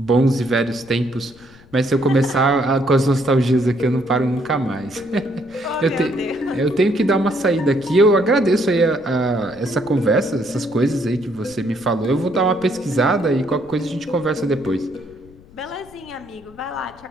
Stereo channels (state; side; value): noise; left; rumble, 24 dB below the sound